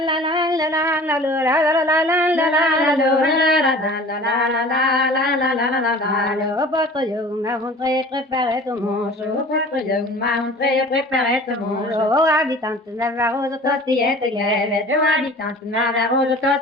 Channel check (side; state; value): both; normal; correlation 0.43